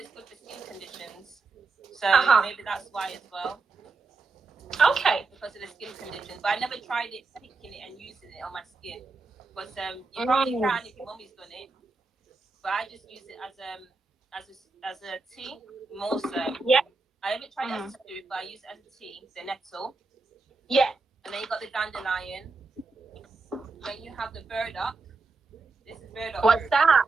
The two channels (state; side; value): quieter; left; 3.9 dB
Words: good for skin conditions, so maybe that's why as well. Okay. Because of the skin conditions, but I never tried it, picking it and using it on my skin. But you probably can if your mummy's done it. But I just use it as a tea more so. Yeah. I haven't tried it as a soup, but I use it as a tea. The nettle. Yeah. And then you got the dandelion. Then you have the burdock. This is burdock. What's that?